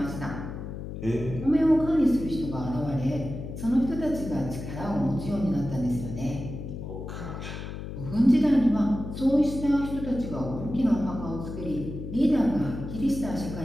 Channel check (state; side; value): noise; left; hum, 8 dB below the sound